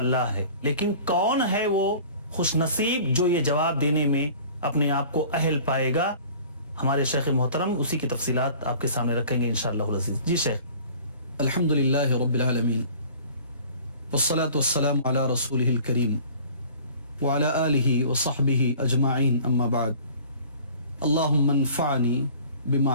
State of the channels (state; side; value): inverted; both; correlation -0.46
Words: ہے، لیکن کون ہے وہ خوش نصیب جو یہ جواب دینے میں اپنے آپ کو اہل پائے گا؟ ہمارے شیخ محترم اسی کی تفصیلات آپ کے سامنے رکھیں گے انشاءاللہ العزیز. جی شیخ. الحمدللہ رب العالمین والصلاة والسلام علی رسولہ الکریم وعلی آلہ وصحبہ اجمعین، اما بعد. اللہم انفعنی